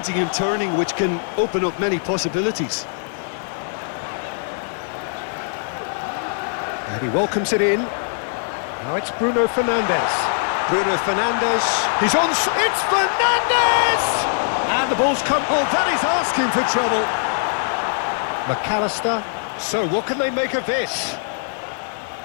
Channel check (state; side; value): silent; right; 65 dB below the other